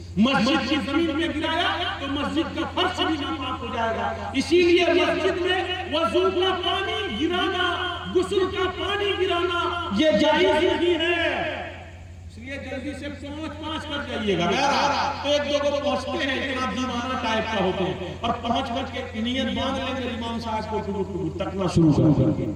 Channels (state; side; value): identical; both; correlation 1.00